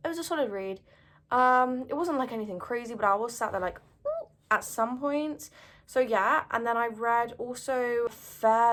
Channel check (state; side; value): identical; both; correlation 1.00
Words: It was a solid read. It wasn't like anything crazy, but I was sat there like, ooh, at some points. So yeah, and then I read also a